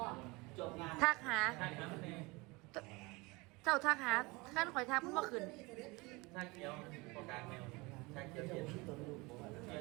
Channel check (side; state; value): left; quieter; 24.7 dB